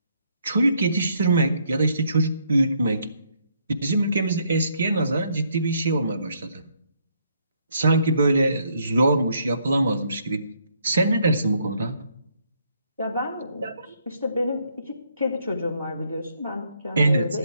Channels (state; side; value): inverted; both; correlation -0.71